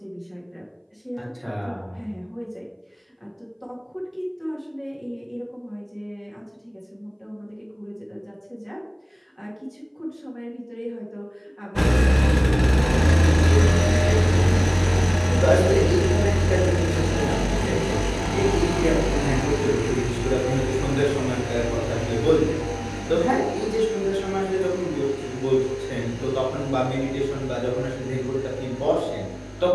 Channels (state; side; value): identical; both; correlation 1.00